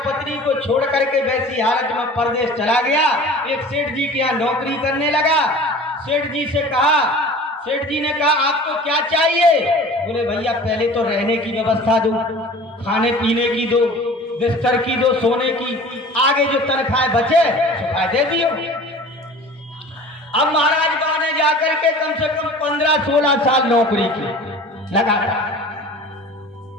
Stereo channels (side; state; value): both; normal; correlation 0.42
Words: पत्नी को छोड़ करके वैसी हालत में परदेश चला गया। एक सेठ जी के यहाँ नौकरी करने लगा। सेठ जी से कहा, सेठ जी ने कहा आपको क्या चाहिए? बोले भैया पहले तो रहने की व्यवस्था दो, खाने पीने की दो, बिस्तर की दो, सोने की, आगे जो तनख्वाह बचे सुखा दे दियो। अब महाराज बा ने जाकर के कम से कम 15-16 साल नौकरी की लगातार।